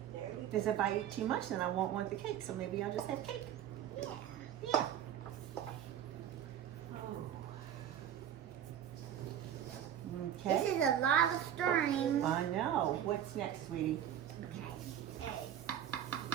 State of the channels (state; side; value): quieter; left; 10.1 dB